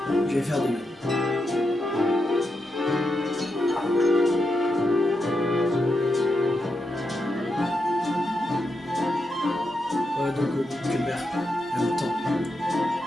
je vais faire de même. Ouais, donc que mère, en même temps,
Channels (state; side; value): normal; both; correlation 0.85